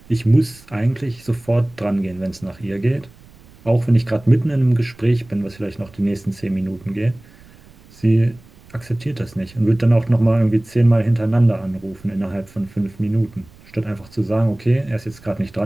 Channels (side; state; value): right; noise; rumble, 25 dB below the sound